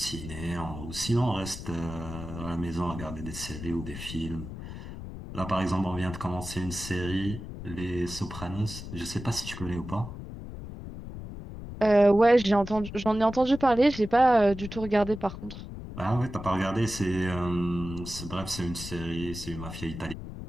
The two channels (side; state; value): left; noise; rumble, 10 dB below the sound